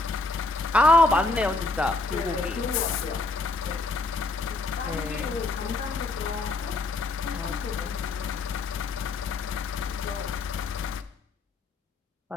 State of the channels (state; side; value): quieter; right; 3.3 dB